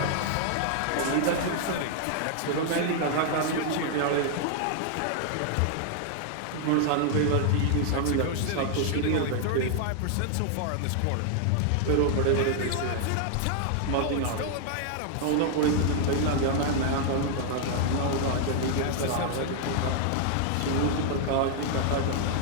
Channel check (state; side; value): different; both; correlation 0.00